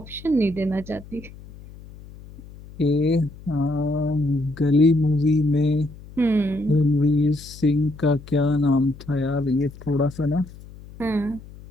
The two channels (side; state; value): left; noise; hum, 18 dB below the sound